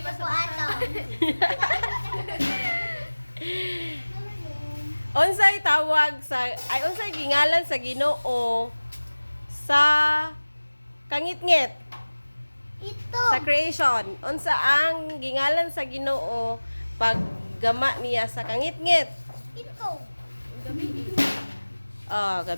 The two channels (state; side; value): inverted; both; correlation -1.00